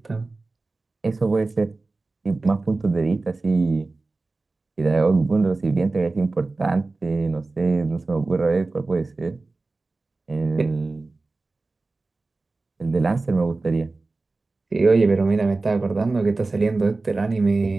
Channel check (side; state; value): left; quieter; 3.5 dB